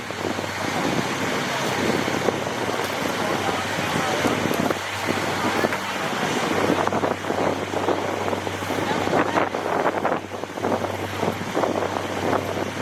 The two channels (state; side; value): identical; both; correlation 1.00